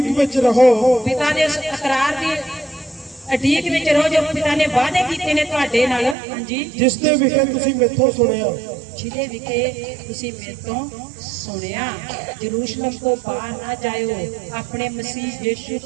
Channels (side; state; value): left; drops out; at 6.2 s